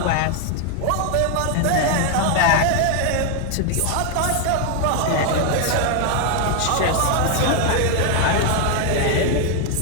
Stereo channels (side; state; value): both; different; correlation 0.01